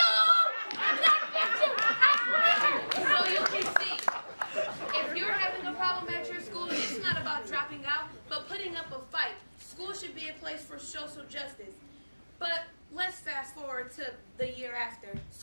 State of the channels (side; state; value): both; inverted; correlation -1.00